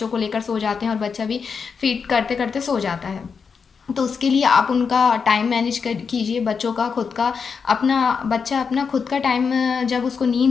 को लेकर सो जाते हैं और बच्चा भी फीड करते करते सो जाता है। तो उसके लिए आप उनका टाइम मैनेज कर कीजिए। बच्चों का खुद का अपना बच्चा अपना खुद का टाइम, जब उसको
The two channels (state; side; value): quieter; right; 5.8 dB